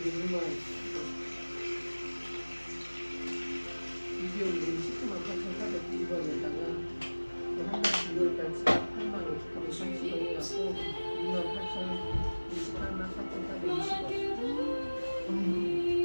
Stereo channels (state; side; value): inverted; both; correlation -1.00